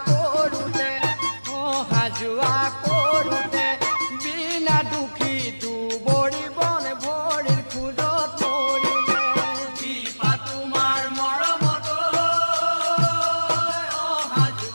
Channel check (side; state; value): both; inverted; correlation -1.00